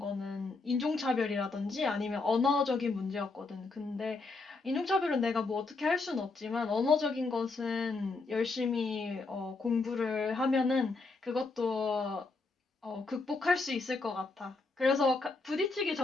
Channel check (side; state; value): right; quieter; 3.8 dB